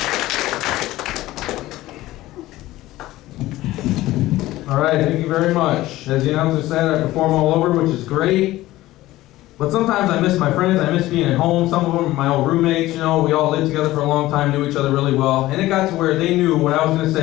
All right, thank you very much. As the announcer said, I perform all over, which is great. But sometimes I miss my friends, I miss being at home. Some of them are my old roommates, you know, we all lived together for a long time, knew each other really well. And it got to where they knew what I was gonna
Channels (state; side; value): quieter; right; 16.7 dB